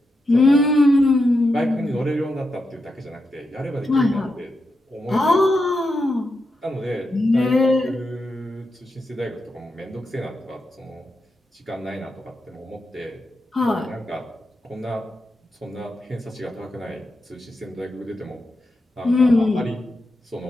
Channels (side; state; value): both; normal; correlation 0.86